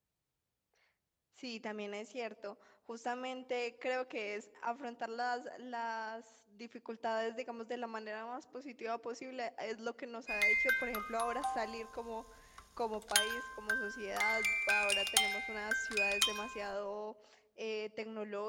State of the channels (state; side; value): identical; both; correlation 1.00